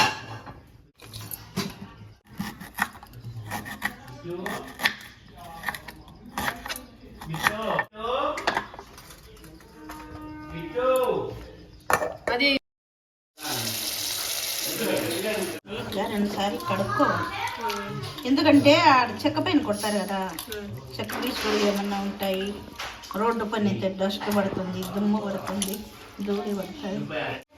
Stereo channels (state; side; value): identical; both; correlation 1.00